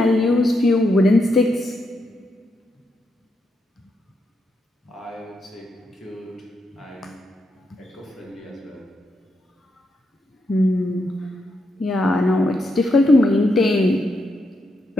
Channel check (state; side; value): normal; both; correlation 0.82